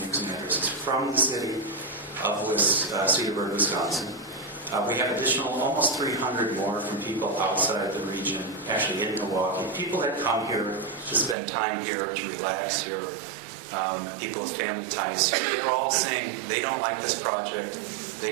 using addresses from the city of Cedarburg, Wisconsin. We have additional almost 300 more from people outside the region, actually in Milwaukee. People that come here to spend time here, to relax here, people with family ties. They're all saying they don't like this project,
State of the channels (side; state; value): left; drops out; at 11.4 s